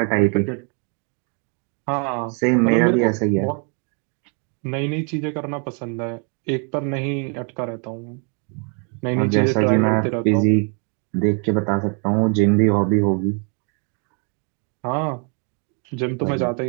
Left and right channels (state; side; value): quieter; left; 38.6 dB